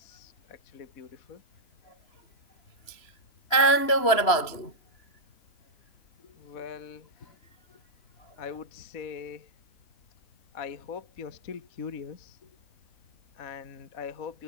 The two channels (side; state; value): right; late; 3.0 ms